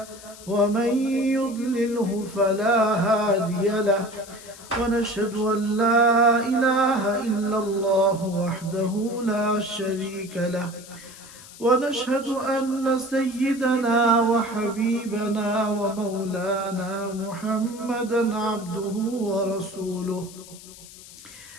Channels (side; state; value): left; noise; hiss, 18 dB below the sound